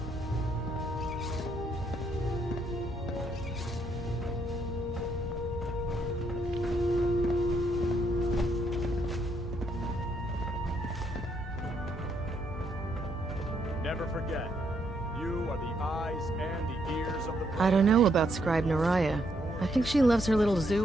Never forget, you are the eyes and the ears of the... I don't know about Scribe Naraya. I think she loves her little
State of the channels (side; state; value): both; normal; correlation 0.74